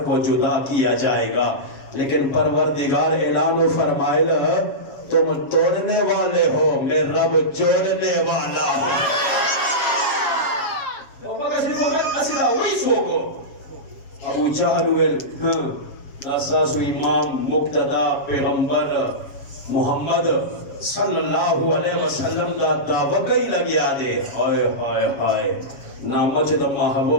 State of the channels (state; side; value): late; right; 7.3 ms